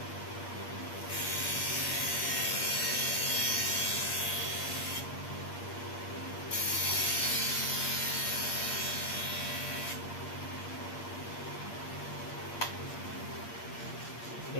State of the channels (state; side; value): late; right; 8.6 ms